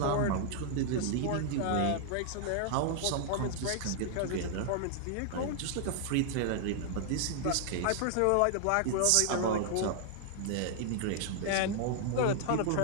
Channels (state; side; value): different; both; correlation 0.00